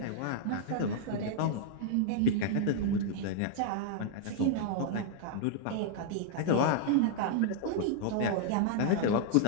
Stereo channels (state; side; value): different; both; correlation -0.01